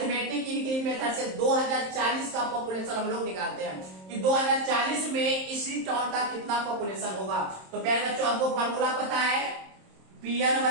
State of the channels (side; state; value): left; late; 27 ms